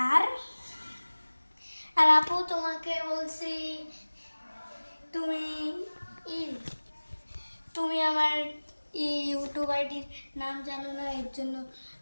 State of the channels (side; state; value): both; inverted; correlation -1.00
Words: আর আর আপু তোমাকে বলছি তুমি ই তুমি আমার ইউটিউব আইডির নাম জানো না, এর জন্য